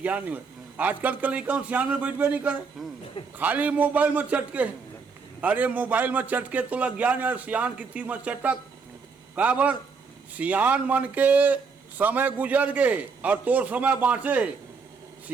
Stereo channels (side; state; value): left; quieter; 5.1 dB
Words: नहीं हुआ। आजकल के लड़का सियान में बैठबे नहीं करे, खाली मोबाइल में चटके। अरे मोबाइल में चटके तो ज्ञान है, सियान की तीर में चटक काबर सियान मन के समय गुजर गए और तोर समय बाँचे।